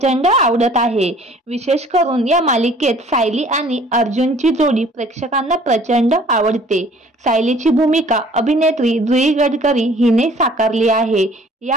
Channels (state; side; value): normal; both; correlation 0.53